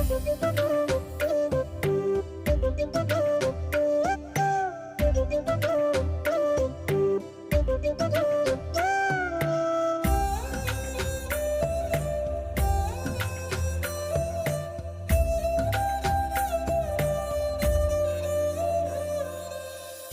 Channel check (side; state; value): both; identical; correlation 1.00